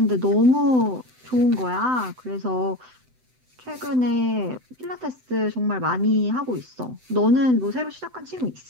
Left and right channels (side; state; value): left; late; 7.9 ms